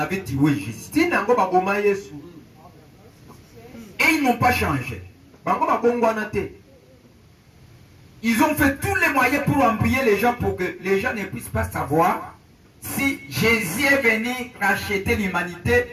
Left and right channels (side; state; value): both; identical; correlation 1.00